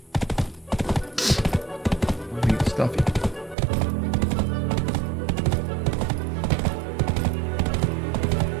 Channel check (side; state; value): left; drops out; at 3.6 s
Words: Let me get stuffy.